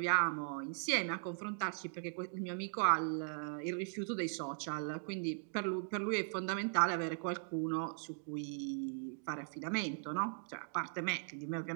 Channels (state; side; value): silent; left; digital silence